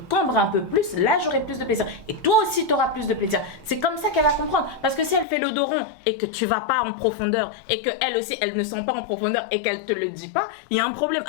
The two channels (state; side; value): drops out; right; at 5.2 s